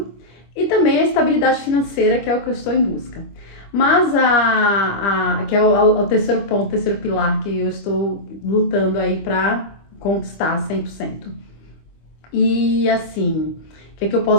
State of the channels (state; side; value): late; right; 25 ms